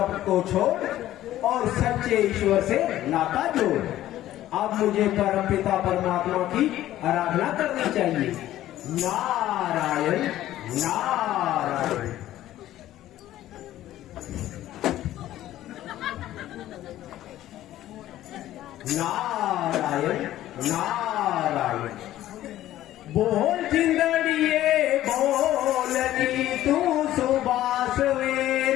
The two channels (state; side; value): quieter; right; 13.8 dB